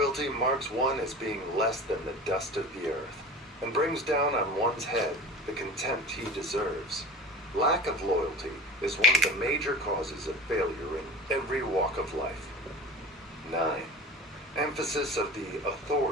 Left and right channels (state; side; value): normal; both; correlation 0.35